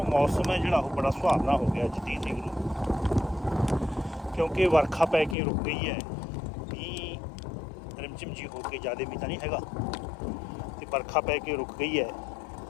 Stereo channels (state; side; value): drops out; right; at 5.4 s